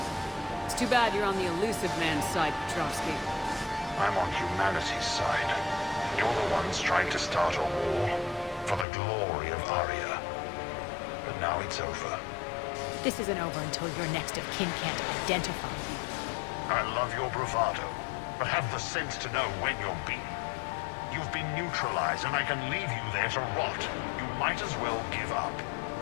It's too bad you're on the elusive man's side, Petrovsky. I'm on humanity's side. You're the ones trying to start a war for the glory of Arya. But now it's over. This isn't over until your next of kin can't identify you. I love your bravado, but have the sense to know when you're beaten. You've been neutralized, and I can leave you there to rot. You might as well give up.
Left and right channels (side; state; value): right; drops out; at 8.8 s